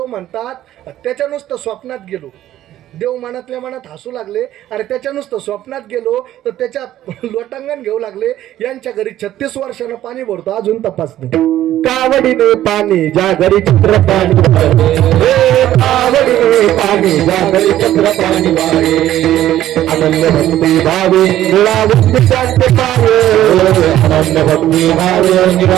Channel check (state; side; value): quieter; left; 13.0 dB